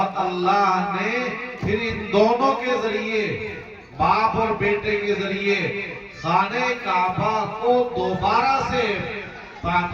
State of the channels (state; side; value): identical; both; correlation 1.00